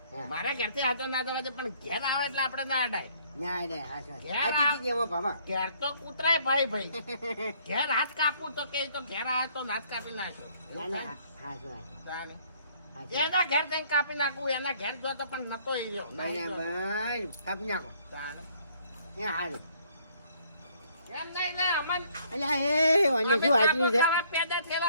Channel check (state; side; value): inverted; both; correlation -0.62